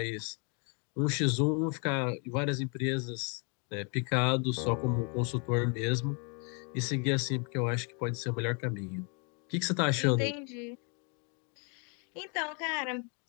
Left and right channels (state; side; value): quieter; right; 37.0 dB